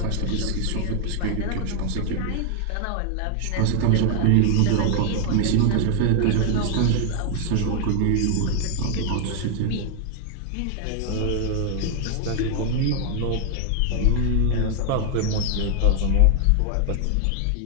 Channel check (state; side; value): different; both; correlation 0.00